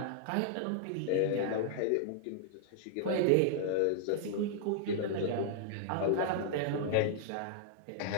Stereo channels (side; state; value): both; different; correlation -0.01